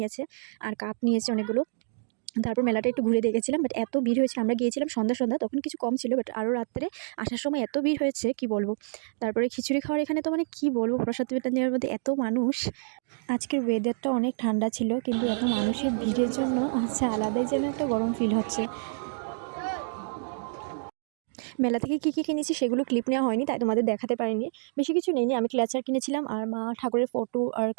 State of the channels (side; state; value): left; silent; digital silence